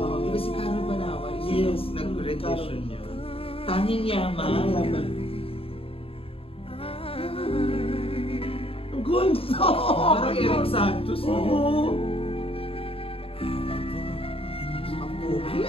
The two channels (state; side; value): late; right; 0.27 ms